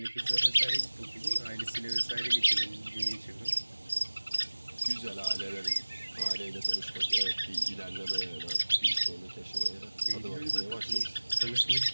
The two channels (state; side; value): inverted; both; correlation -1.00